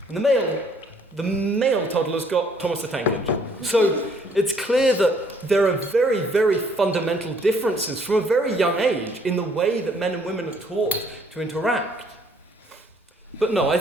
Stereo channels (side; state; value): both; normal; correlation 0.64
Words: And the male toddlers got Thomas the Tank Engine. So it's clear that there are very, very fundamental differences from a very young age in the way that men and women are taught to interact. But no, I